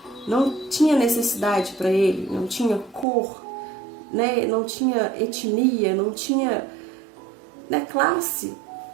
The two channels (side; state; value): left; drops out; at 3.1 s